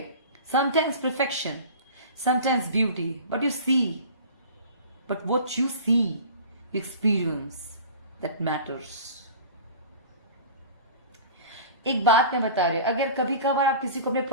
Sometimes perfection, sometimes beauty. But you see, but what you see, you experience, that matters. एक बात मैं बता रही हूं, अगर कभी कभार आप किसी को अपने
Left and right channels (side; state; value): both; inverted; correlation -0.39